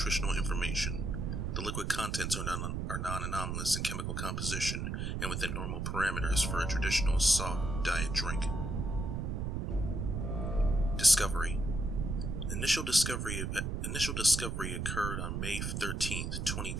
information. The liquid contents are non-anomalous in chemical composition and within normal parameters for a traditional soft diet drink. Discovery. Initial discovery occurred on May 13,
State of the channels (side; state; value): right; noise; rumble, 2 dB below the sound